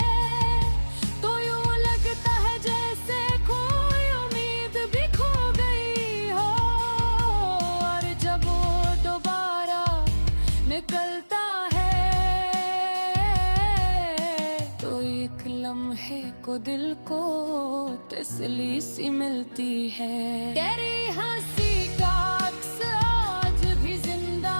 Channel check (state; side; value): inverted; both; correlation -1.00